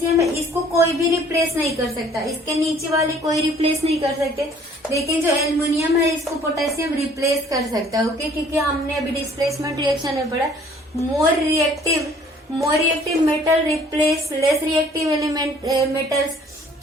है इसको कोई भी रिप्लेस नहीं कर सकता, इसके नीचे वाली कोई रिप्लेस नहीं कर सकते, लेकिन जो एल्युमिनियम है इसको पोटेशियम रिप्लेस कर सकता है। ओके, क्योंकि हमने अभी डिस्प्लेसमेंट रिएक्शन में पढ़ा, मोर reactive metal replace less reactive element metals.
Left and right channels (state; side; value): normal; both; correlation 0.56